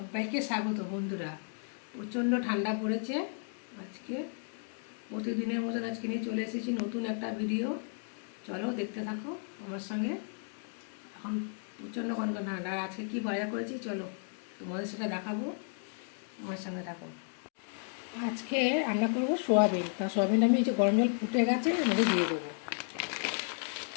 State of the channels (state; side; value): silent; right; 55 dB below the other